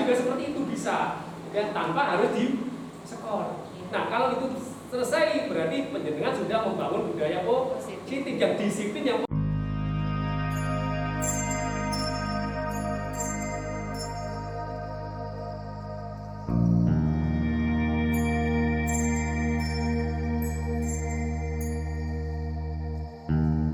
seperti itu bisa, ya, tanpa harus di skor. Nah, kalau itu selesai berarti penjenengan sudah membangun budaya positif yang disiplin yang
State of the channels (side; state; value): both; identical; correlation 1.00